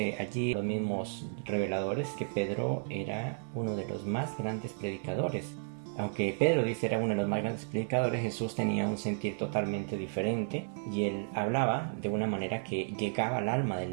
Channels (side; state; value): left; silent; 56 dB below the other